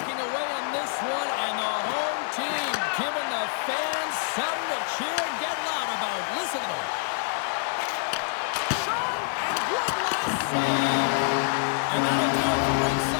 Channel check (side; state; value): right; silent; digital silence